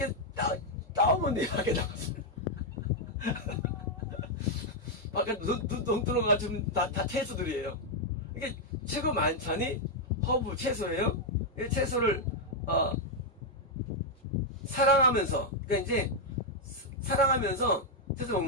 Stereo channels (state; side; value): normal; both; correlation -0.01